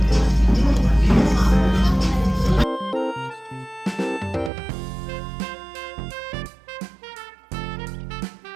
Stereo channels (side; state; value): left; drops out; at 4.5 s